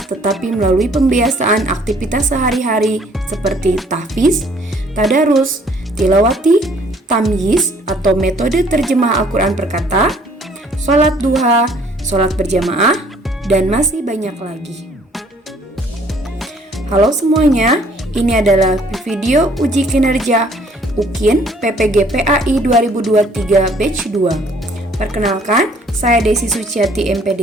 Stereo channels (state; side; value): normal; both; correlation 0.59